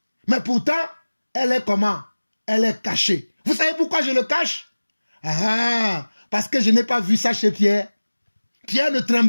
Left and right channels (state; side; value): inverted; both; correlation -1.00